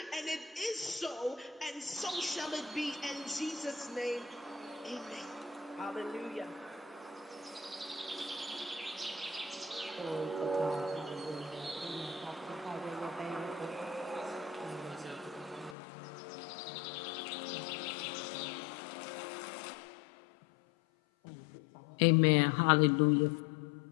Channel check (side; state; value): right; drops out; at 15.8 s